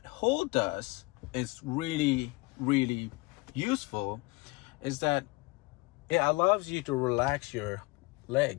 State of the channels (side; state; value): right; quieter; 24.9 dB